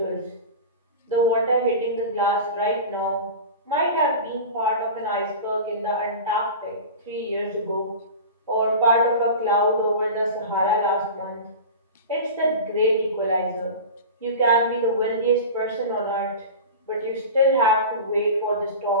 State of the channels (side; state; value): both; inverted; correlation -0.31